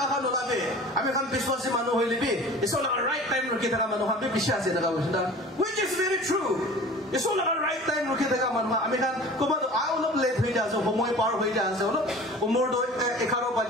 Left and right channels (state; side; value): normal; both; correlation 0.42